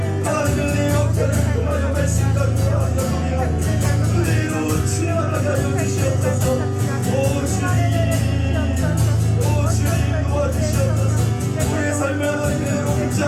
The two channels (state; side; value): identical; both; correlation 1.00